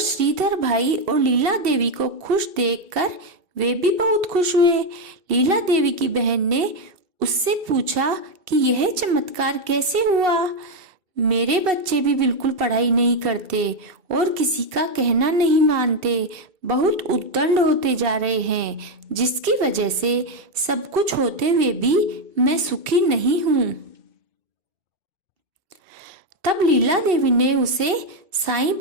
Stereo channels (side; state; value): left; late; 2.7 ms